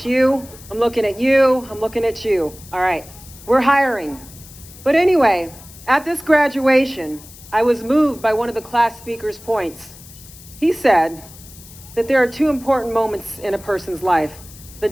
you, I'm looking at you, I'm looking at you. All right, we're hiring. But anyway, at this graduation, I was moved by one of the class speaker's points. He said that there are 2 important moments in a person's life: the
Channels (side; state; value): left; noise; hiss, 19 dB below the sound